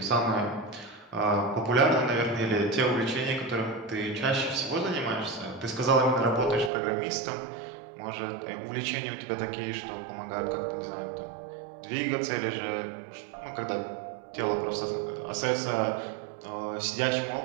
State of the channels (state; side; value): drops out; left; at 6.7 s